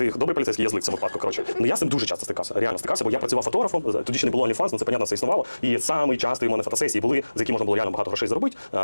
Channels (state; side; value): inverted; both; correlation -1.00